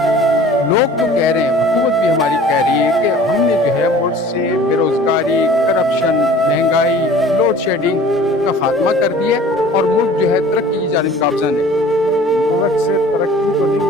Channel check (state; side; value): normal; both; correlation 0.46